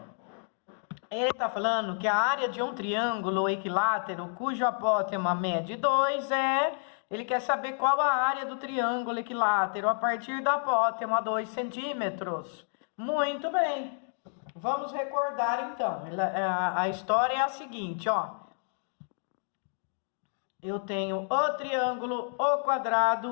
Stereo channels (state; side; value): silent; right; 56 dB below the other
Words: Ele está falando que a área de um triângulo equilátero cujo apótema mede 2 Ele quer saber qual a área do triângulo equilátero a partir da apótema 2 centímetros. Muito bem. Vamos recordar então. A história é a seguinte, ó. Eu tenho o triângulo, o